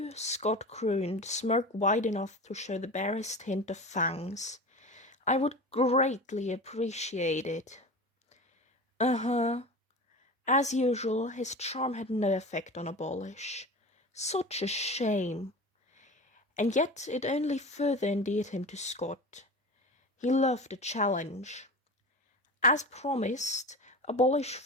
Scott crooned, smirk wide enough to show the barest hint of fangs. I would greatly appreciate it. Uh-huh. As usual, his charm had no effect on Abolish. Such a shame. And yet it only further endeared him to Scott. He loved a challenge. As promised, Abolish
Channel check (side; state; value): both; normal; correlation 0.31